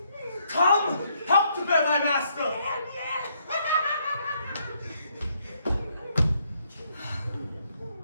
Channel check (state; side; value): inverted; both; correlation -0.72